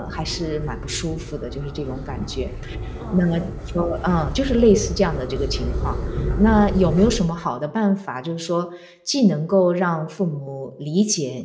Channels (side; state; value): both; identical; correlation 1.00